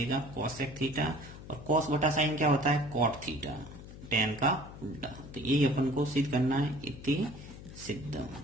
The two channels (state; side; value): noise; left; hum, 14 dB below the sound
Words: कॉसेक थीटा, और कॉस बटा साइन क्या होता है कॉट थीटा, टेन का उल्टा। तो यही अपन को सिद्ध करना है, इति सिद्धम।